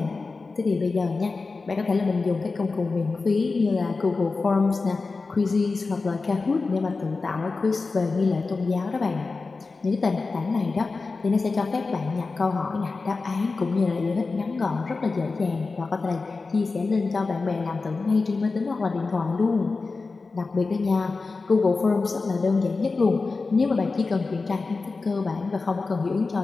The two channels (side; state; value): right; quieter; 4.0 dB